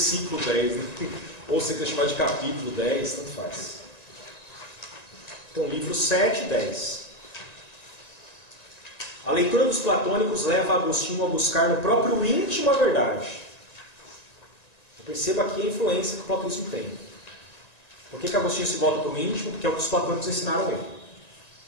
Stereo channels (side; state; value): right; late; 1.9 ms